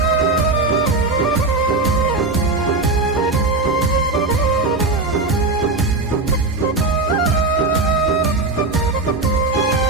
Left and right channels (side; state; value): left; quieter; 3.2 dB